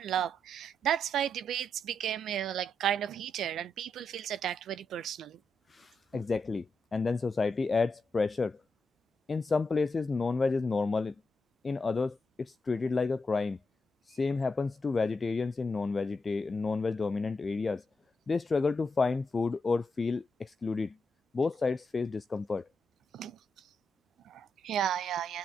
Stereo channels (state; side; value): normal; both; correlation 0.84